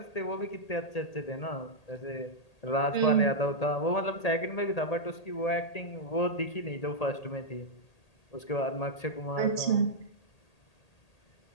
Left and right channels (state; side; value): late; right; 1.8 ms